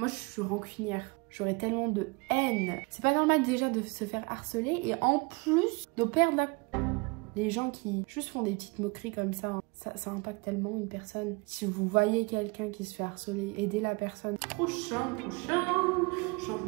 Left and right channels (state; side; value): quieter; left; 28.4 dB